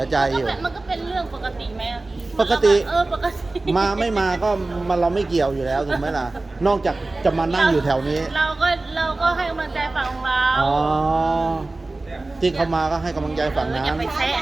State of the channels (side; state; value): left; quieter; 3.1 dB